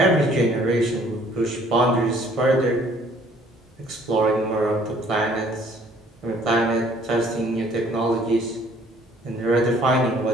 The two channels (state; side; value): normal; both; correlation 0.58